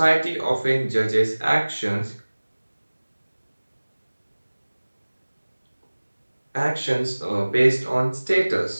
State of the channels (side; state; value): both; inverted; correlation -1.00